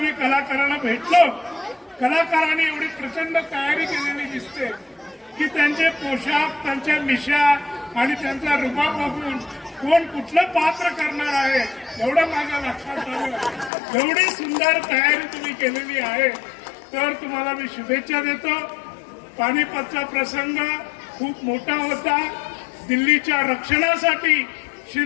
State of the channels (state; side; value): drops out; right; at 13.7 s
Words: कलाकारांना भेटलो, कलाकारांनी एवढी प्रचंड तयारी केलेली दिसते की त्यांचे पोशाख, त्यांच्या मिशा आणि त्यांचा रुबाब बघून कोण कुठलं पात्र करणार आहे एवढं माझ्या लक्षात आलं. एवढी सुंदर तयारी तुम्ही केलेली आहे, तर तुम्हाला मी शुभेच्छा देतो. पानिपतचा प्रसंग खूप मोठा होता. दिल्लीच्या रक्षणासाठी